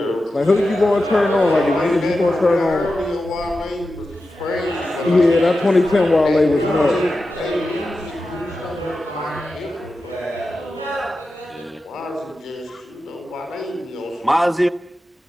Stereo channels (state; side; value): normal; both; correlation 0.92